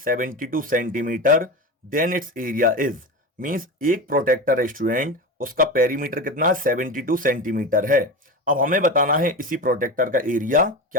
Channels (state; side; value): normal; both; correlation 0.24